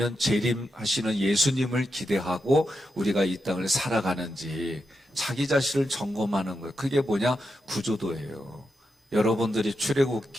재림하시는 예수님을 기대하고 우리가 이 땅을 살아가는지, 자기 자신을 점검하는 거예요. 그게 뭐냐? 구조도예요. 여러분들이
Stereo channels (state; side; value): normal; both; correlation 0.86